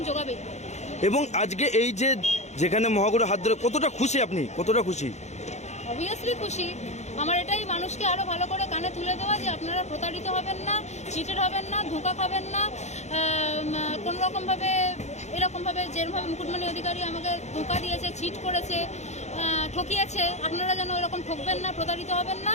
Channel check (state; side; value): late; right; 0.33 ms